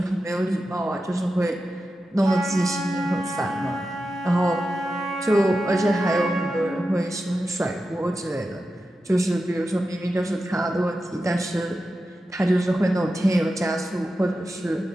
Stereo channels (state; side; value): normal; both; correlation 0.91